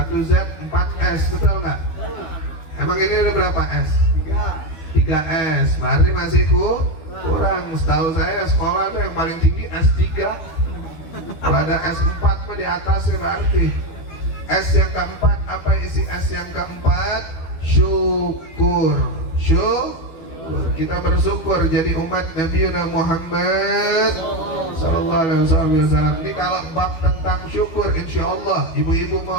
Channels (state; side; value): late; right; 12 ms